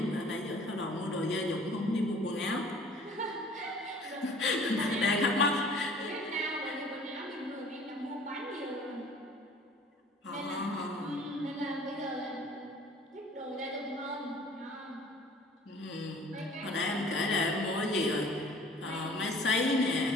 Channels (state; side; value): normal; both; correlation 0.50